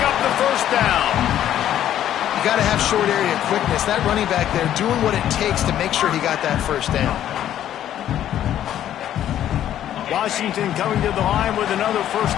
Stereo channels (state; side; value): quieter; right; 11.3 dB